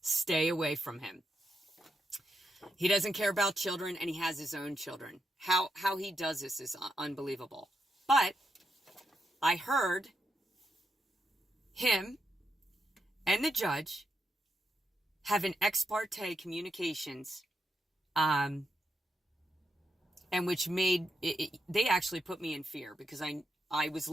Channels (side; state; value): both; normal; correlation 0.83